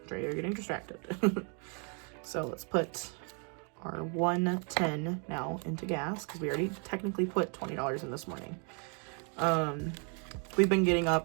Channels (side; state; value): left; quieter; 38.3 dB